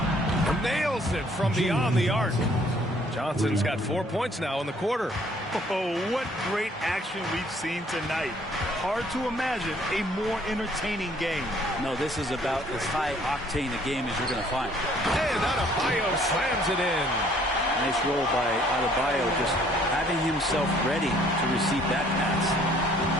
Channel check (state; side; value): normal; both; correlation 0.60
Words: Nails it from beyond the arc. Johnson's got 4 points now in the quarter. Oh, what great action we've seen tonight. Hard to imagine a more entertaining game. No, this is about as high-octane a game as you're going to find. And Adebayo slams it in. Nice roll by Adebayo, just having himself ready to receive that pass.